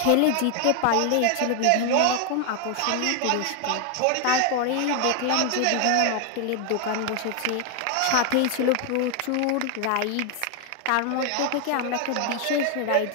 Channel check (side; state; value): both; different; correlation 0.00